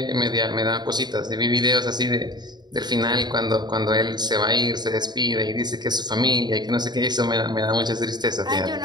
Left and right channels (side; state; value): left; late; 0.20 ms